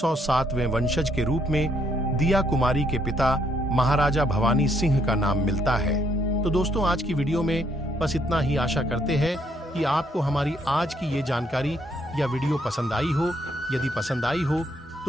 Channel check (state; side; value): normal; both; correlation 0.71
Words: वंशज के रूप में दिया कुमारी के पिता महाराजा भवानी सिंह का नाम मिलता है। तो दोस्तों, आज की वीडियो में बस इतना ही। आशा करते हैं कि आपको हमारी आज की ये जानकारी या वीडियो पसंद आई हो। यदि पसंद आई हो